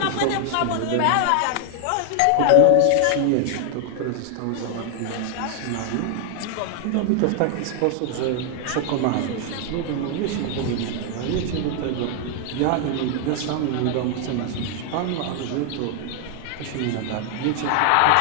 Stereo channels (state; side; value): different; both; correlation 0.00